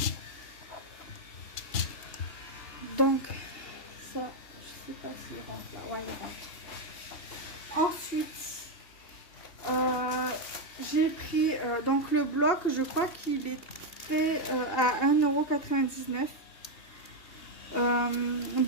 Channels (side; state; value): right; late; 2.8 ms